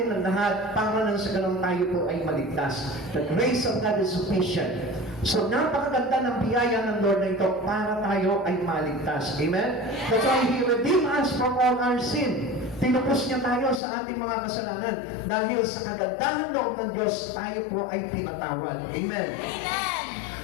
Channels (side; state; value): right; drops out; at 13.8 s